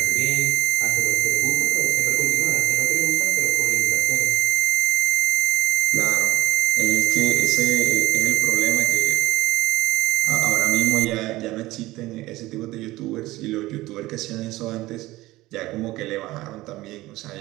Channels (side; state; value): left; quieter; 18.3 dB